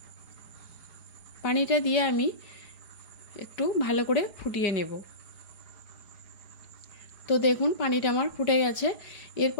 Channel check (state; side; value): late; right; 4.9 ms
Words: পানিটা দিয়ে আমি একটু ভালো করে ফুটিয়ে নেব। তো দেখুন, পানিটা আমার ফুটে গেছে।